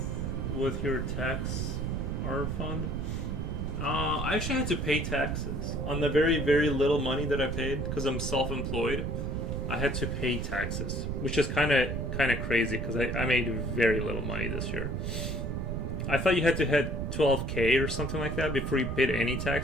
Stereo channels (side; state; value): right; noise; rumble, 2 dB below the sound